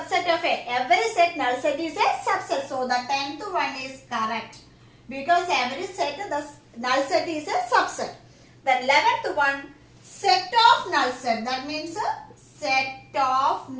of A. Every set null set is a subset. So the 10th one is correct. Because every set the null set is a subset. The 11th one, set of null set. That means set of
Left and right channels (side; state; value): both; identical; correlation 1.00